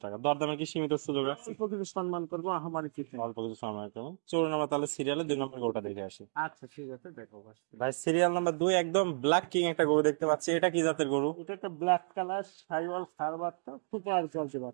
টাকা। দরদামে কি সীমিত সুযোগ আছে? অল্প কিছু সম্মান করবো, আমারই কিছু না। অল্প কিছু সময় করুন। চলুন আমরা তাহলে সিরিয়ালে 2 নম্বর গরুটা দেখে আসি। আচ্ছা ঠিক আছে, দেখো ভাই। ভাই সিরিয়াল নাম্বার 2 একদম ব্ল্যাক কিং একটা গরু দেখতে পাচ্ছি। এটা কি জাতের গরু? এটা একটা ব্ল্যাক কালার সাইওয়াল ষাঁড় বাচ্চা, সুপার কোয়ালিটি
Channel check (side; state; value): left; silent; digital silence